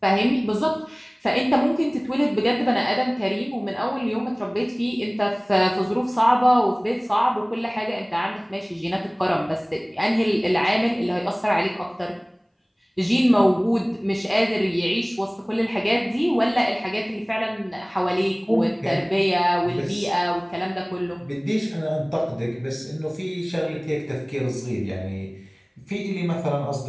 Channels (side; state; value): both; identical; correlation 1.00